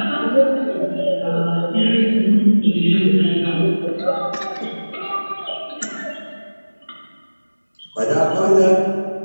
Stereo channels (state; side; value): inverted; both; correlation -1.00